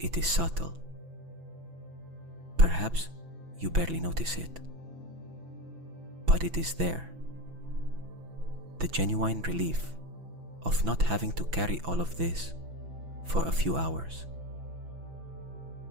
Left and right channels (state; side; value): late; left; 6.0 ms